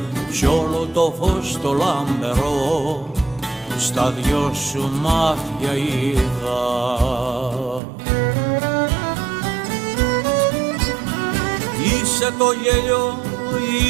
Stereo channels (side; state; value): left; drops out; at 7.8 s